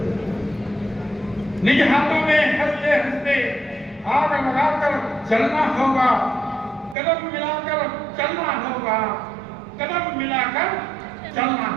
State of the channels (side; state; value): left; drops out; at 7.0 s